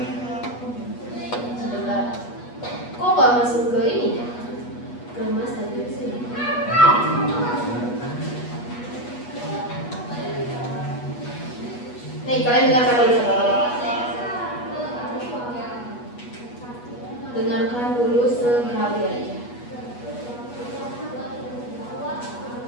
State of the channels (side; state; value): right; late; 8.3 ms